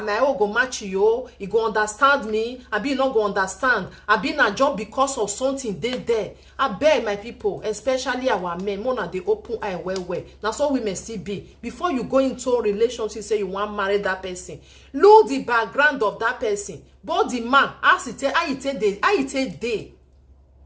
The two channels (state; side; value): identical; both; correlation 1.00